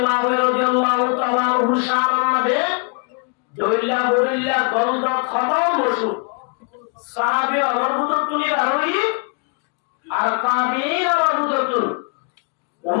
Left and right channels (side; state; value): right; quieter; 36.5 dB